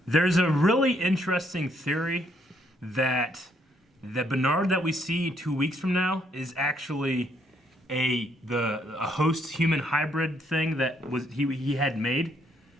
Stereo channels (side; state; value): both; normal; correlation 0.71